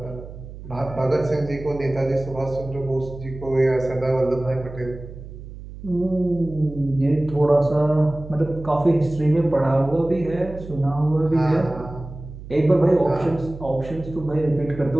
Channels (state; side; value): noise; right; hum, 14 dB below the sound